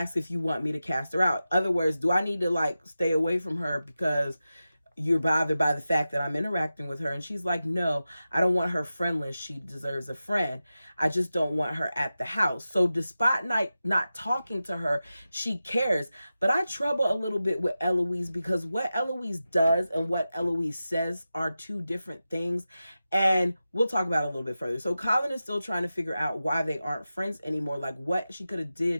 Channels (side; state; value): both; inverted; correlation -0.93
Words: if you want me to cast her out. Other words, do I need to stay away from her because you're bothered by the fact that I'm interacting with her? And she's like, no, I don't want her friendless. She deserves a friend. I just don't want her at the house. So despite not talking to her, she cares. But I trouble a little bit with Eloise because what Eloise does and what Eloise says are two different things. And we'll talk about it a little bit further. So Colin is still trying to figure out why they aren't friends anymore. Like what she could have